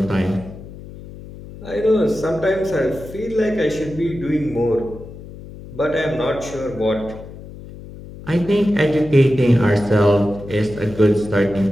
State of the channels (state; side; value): noise; left; hum, 15 dB below the sound